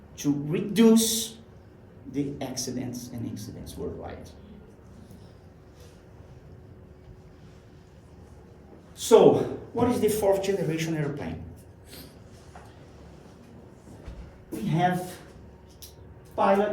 to reduce the accidents and incidents worldwide. So, what is the 4th generation airplane? We have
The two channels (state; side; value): identical; both; correlation 1.00